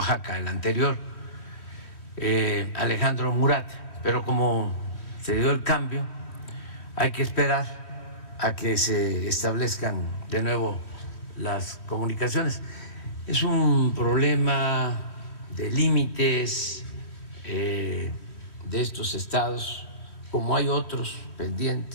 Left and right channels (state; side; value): late; right; 3.1 ms